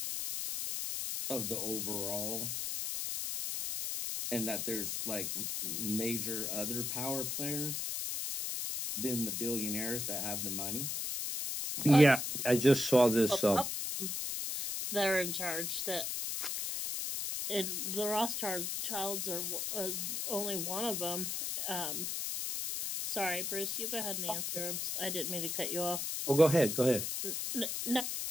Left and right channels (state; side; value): noise; left; hiss, 2 dB below the sound